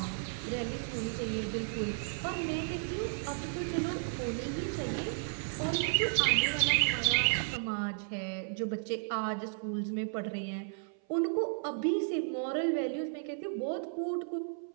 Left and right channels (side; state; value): left; silent; 55 dB below the other